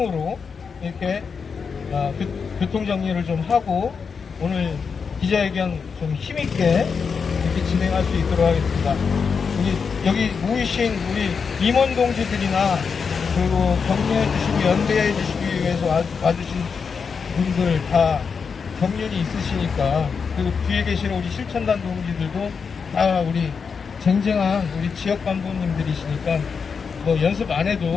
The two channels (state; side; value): quieter; right; 5.7 dB